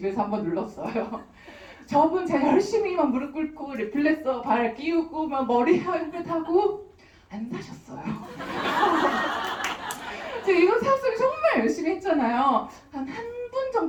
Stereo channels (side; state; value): both; identical; correlation 1.00